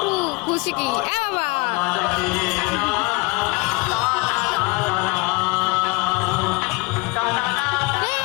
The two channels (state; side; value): quieter; right; 25.8 dB